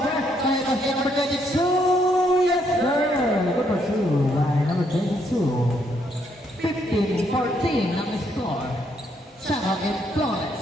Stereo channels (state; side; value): normal; both; correlation 0.73